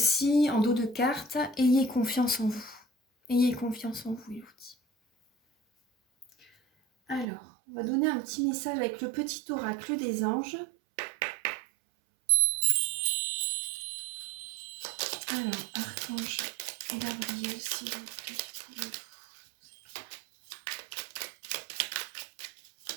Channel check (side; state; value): left; drops out; at 7.2 s